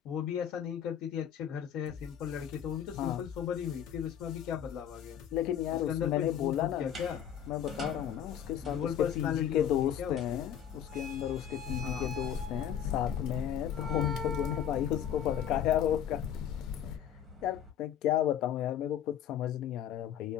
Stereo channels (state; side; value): quieter; right; 9.4 dB